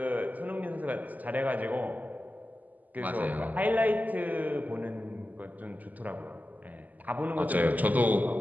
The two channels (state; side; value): late; left; 0.080 ms